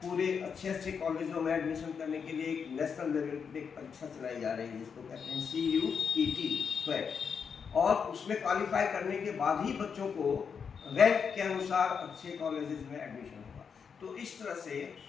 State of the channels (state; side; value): quieter; right; 6.4 dB